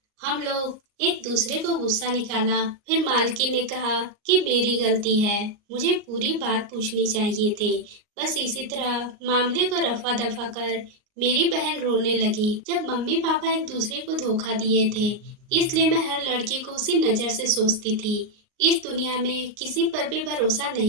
हम लोग एक दूसरे को गुस्सा निकाला। फिर मालकिन ने कहा कि मेरी गलती है, मुझे पूरी बात पूछनी चाहिए थी। बस इसी तरह मामले को रफा दफा कर मेरी बहन रोने लगी। जब मम्मी पापा एक दूसरे को धोखा दिए थे, इसलिए मैं हर लड़के को उसी नजर से सोचती थी। इस दुनिया में किसी पर भी भरोसा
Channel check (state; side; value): late; left; 38 ms